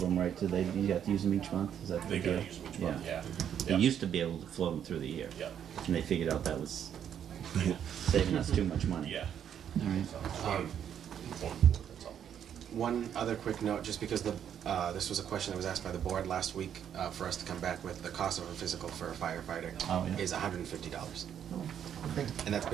them, right? Do they? You have to use them each month? Is that the They gotta deal? use them each month, yeah. They Yeah. used to be able to float them through the year. Yeah. And they figured out that was saving us too much money. Yeah. All right. That's all. One other quick note, just because this was a question that was asked by the board last week, for us to come back with the cost of a physical for a firefighter Oh, yeah. is $150. Okay. And that's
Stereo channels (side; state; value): left; quieter; 9.1 dB